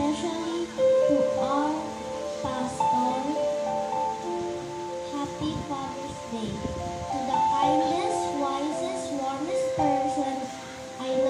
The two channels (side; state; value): both; identical; correlation 1.00